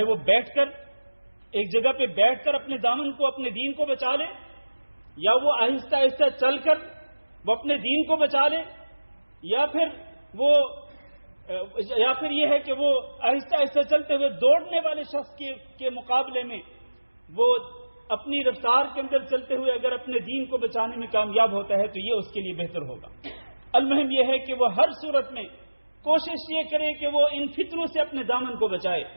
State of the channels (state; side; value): inverted; both; correlation -1.00